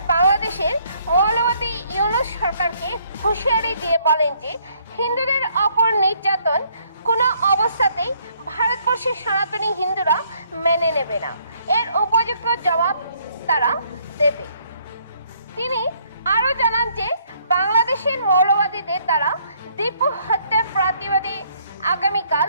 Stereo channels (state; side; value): inverted; both; correlation -0.66